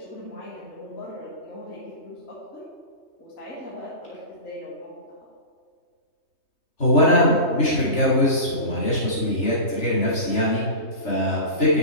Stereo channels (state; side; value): late; right; 3.2 ms